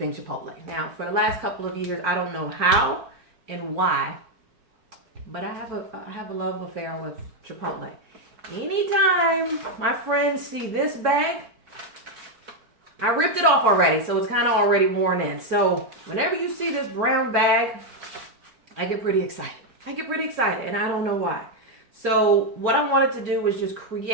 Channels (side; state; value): left; late; 4.4 ms